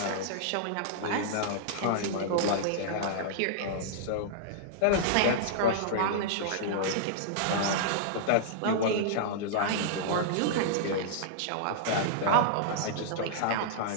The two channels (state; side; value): different; both; correlation -0.02